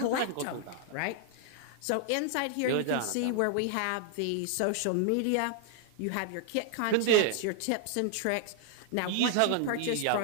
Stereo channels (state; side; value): different; both; correlation -0.01